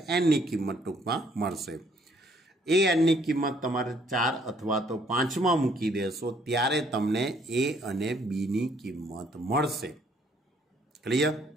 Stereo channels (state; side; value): normal; both; correlation 0.65